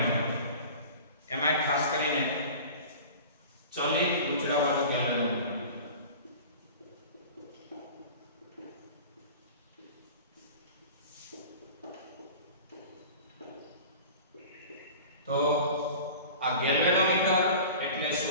એમાં ખાસ કરીને ચલિત ગુચડાવાળું ગેલ્વેનોમીટર। તો આ ગેલ્વેનોમીટર એટલે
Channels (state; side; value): inverted; both; correlation -0.39